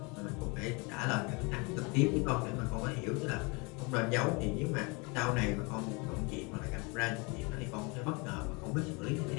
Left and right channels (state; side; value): quieter; right; 29.2 dB